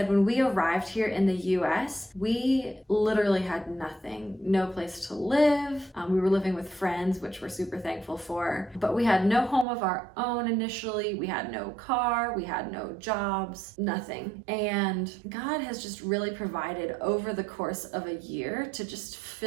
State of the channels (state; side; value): drops out; left; at 9.7 s